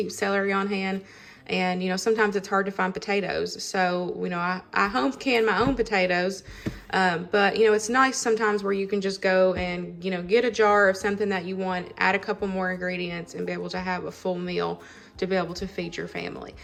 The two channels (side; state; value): both; identical; correlation 1.00